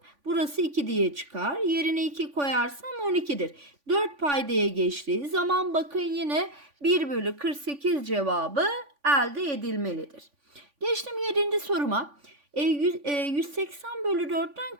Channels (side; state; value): left; late; 3.5 ms